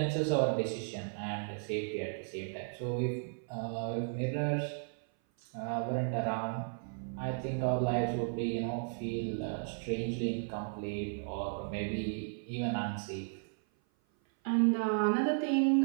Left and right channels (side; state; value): left; silent; 55 dB below the other